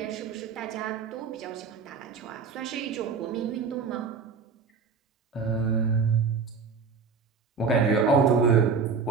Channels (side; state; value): left; quieter; 5.3 dB